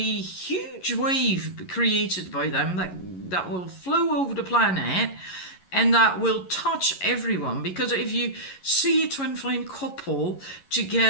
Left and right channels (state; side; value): late; right; 11 ms